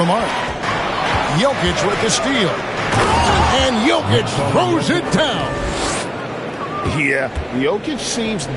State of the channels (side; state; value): both; identical; correlation 1.00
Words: mark. Jokic with the steal. And Jokic throws it down. Yeah, Jokic seems